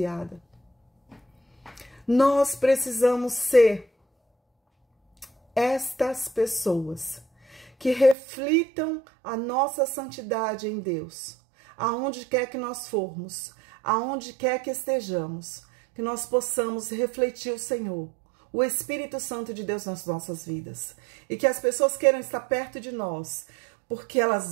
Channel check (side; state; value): left; drops out; at 8.2 s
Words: Nós precisamos ser estas pessoas que reflitam a nossa santidade em Deus, aonde quer que nós formos, aonde quer que estejamos, que nós possamos refletir o Senhor, o Espírito Santo de Deus nas nossas vidas, e que as pessoas queiram estar perto de nós, porque